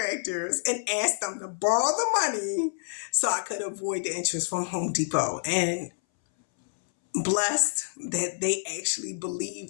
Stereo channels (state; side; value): silent; right; 60 dB below the other